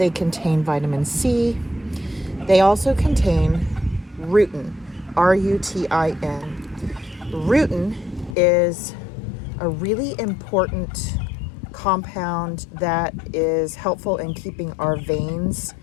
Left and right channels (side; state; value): right; drops out; at 8.3 s